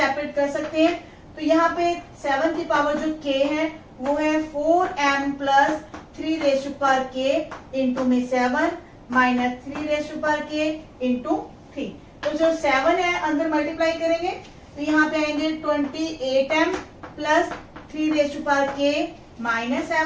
कर सकते हैं। तो यहाँ पे 7 की पावर जो k है वो है 4m plus 3 raise to power k into में 7 minus 3 raise to power k into 3। तो जो 7 है अंदर मल्टीप्लाई करेंगे तो यहाँ पे आएंगे 28m plus 3 raise to power k minus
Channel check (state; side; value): identical; both; correlation 1.00